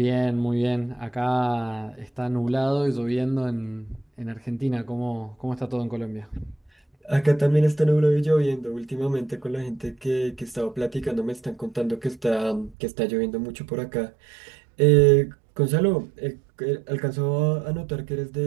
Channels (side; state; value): left; drops out; at 12.8 s